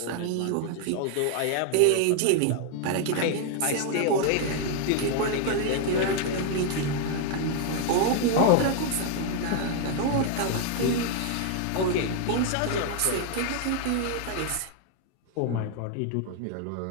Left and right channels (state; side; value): different; both; correlation 0.00